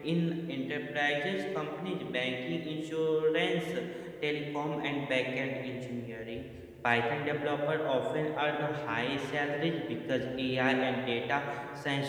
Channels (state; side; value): identical; both; correlation 1.00